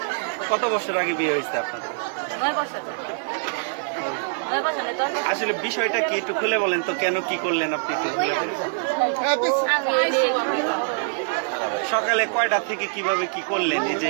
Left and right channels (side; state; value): left; silent; 58 dB below the other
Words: কত বছর আগে বিয়ে হয়েছে আপনাদের? 9 বছর। 9 বছর নেই 10 বছর। আসলে বিষয়টা কি একটু খুলে বলেন তো, কেন কি করলেন আপনি একটু খুলে বলেন। আমি এই যে সকালে কয়টা থেকে কিভাবে কি করলেন, এই যে